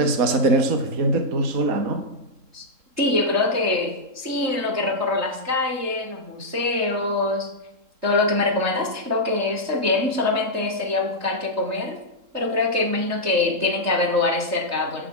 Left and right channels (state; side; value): late; left; 3.7 ms